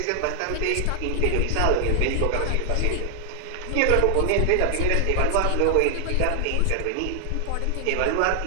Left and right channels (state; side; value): different; both; correlation 0.00